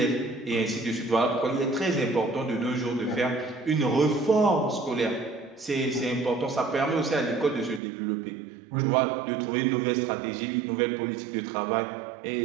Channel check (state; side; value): drops out; left; at 7.8 s